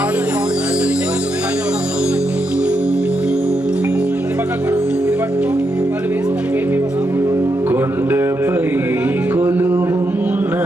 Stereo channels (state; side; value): normal; both; correlation 0.82